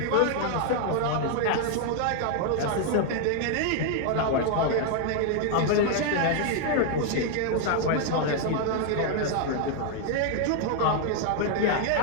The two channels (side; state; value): both; different; correlation 0.00